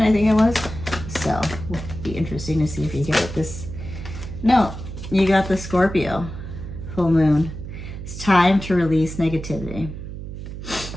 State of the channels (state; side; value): noise; right; hum, 9 dB below the sound